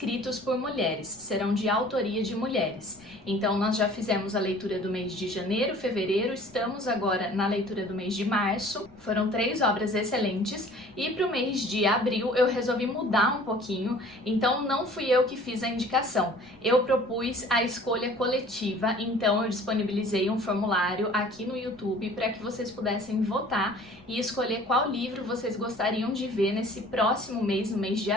por mulheres, serão de autoria de mulheres. Então nós já fizemos a leitura do mês de janeiro, fevereiro, estamos agora na leitura do mês de março. Foram 3 obras excelentes e para o mês de abril eu resolvi mudar um pouquinho, então não fui eu que fiz a indicação. Eu propus a escolha coletiva, então eu disponibilizei um formulário aqui no YouTube para que vocês pudessem votar e escolher qual livro vocês gostariam de ver nesse próximo mês, no mês de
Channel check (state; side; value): noise; right; rumble, 29 dB below the sound